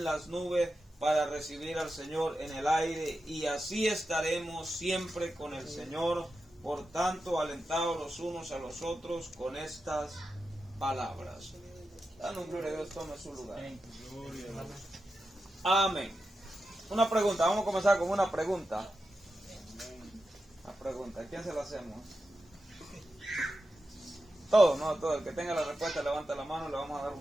las nubes para recibir al Señor en el aire, y así estaremos siempre con el Señor. Por tanto, alentados los unos a los otros con estas palabras. Dando gloria a Dios, tome su lugar. Amén. Una pregunta, vamos a comenzar con una pregunta. Una pregunta, ¿a quién se la hacemos? Todo, no, todo. El que tenga la respuesta levanta la mano, le vamos a dar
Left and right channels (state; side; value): normal; both; correlation 0.90